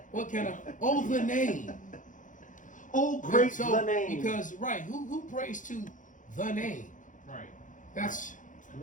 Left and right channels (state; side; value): late; right; 0.37 ms